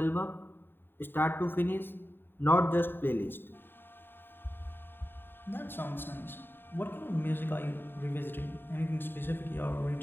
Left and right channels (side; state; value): right; late; 0.098 ms